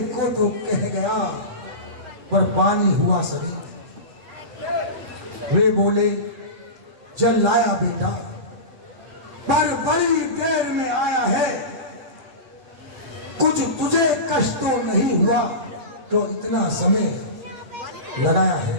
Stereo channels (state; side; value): late; left; 7.9 ms